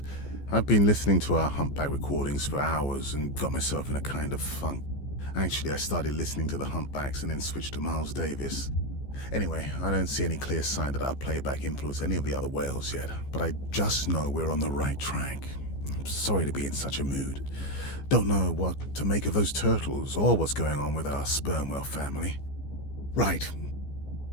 I've been listening to our humpback recordings for hours and got myself in a kind of funk. Actually, I started listening to the humpbacks and then switched to Miles Davis. Anyway, I don't see any clear sign that our playback influenced any of the other whales yet, but I just know we're on the right track. I'm sorry to be in such a mood. Don't know what to make of those turtles or what's going on with our sperm whale family. Right.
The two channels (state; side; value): late; right; 15 ms